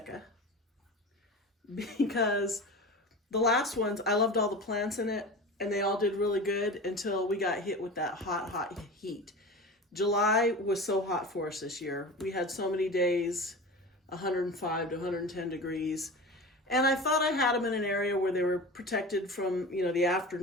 because the last ones, I loved all the plants in it and they all did really good until we got hit with that hot heat. July was so hot for us this year. We had so many days, 105 to 110 degrees. And I thought I had them in an area where they were protected from, the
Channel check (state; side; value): normal; both; correlation 0.32